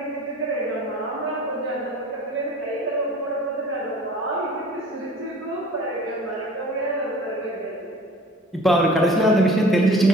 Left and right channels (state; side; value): normal; both; correlation 0.46